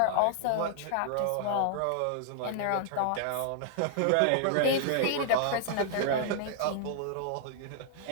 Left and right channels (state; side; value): different; both; correlation -0.01